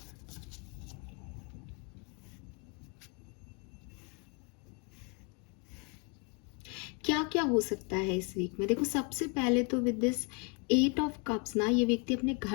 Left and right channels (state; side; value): quieter; right; 34.0 dB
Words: क्या क्या हो सकता है इस वीक में? देखो, सबसे पहले तो विद दिस 8 ऑफ कप्स ना, ये व्यक्ति अपने